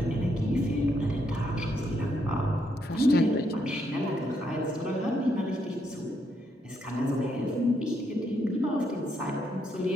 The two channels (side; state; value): both; normal; correlation 0.76